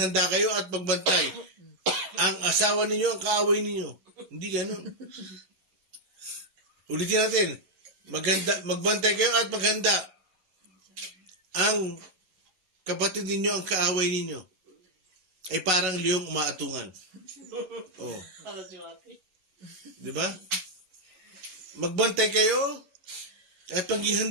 kayo at magbantay. Ang asawa ninyo ang kaaway ninyo. Hindi ganun. Ulitin natin. Magbantay kayo at maghanda. Ang kapatid ninyo ang kaaway ninyo. Ay parang liyong umaatungan. Oh. Di ba? Magbantay kayo at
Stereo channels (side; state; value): left; late; 11 ms